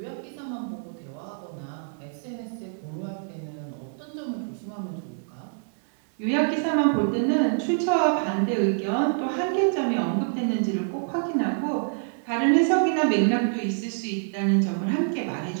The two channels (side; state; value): left; silent; digital silence